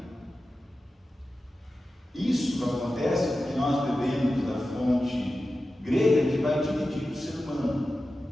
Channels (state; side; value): normal; both; correlation 0.93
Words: Isso acontece porque nós bebemos da fonte grega que vai dividir o ser humano.